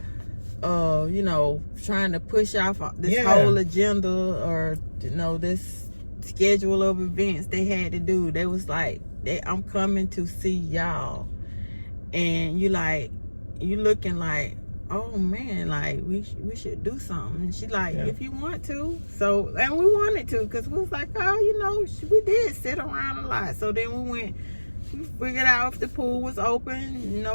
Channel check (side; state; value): both; inverted; correlation -1.00